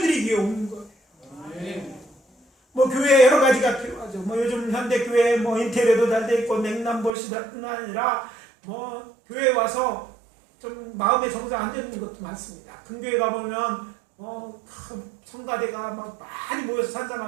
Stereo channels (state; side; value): drops out; left; at 7.2 s